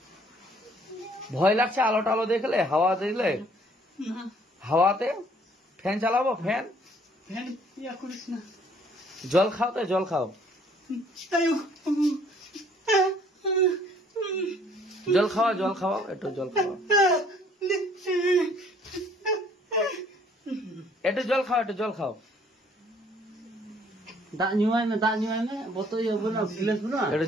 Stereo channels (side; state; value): both; normal; correlation 0.60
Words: ভয় লাগছে আলো টালো দেখলে, হাওয়া দেখলে? হাওয়াতে ফ্যান চালাবো? ফ্যান জল খাও তো, জল খাও, জল খাওয়া, জল খাওয়াও, একটু জল খাওয়া, একটু জল খাও, একটু জল খাও, দাঁত নিমাই না, দাঁত নিমাই না, বোতল না, গিলাস না, একটু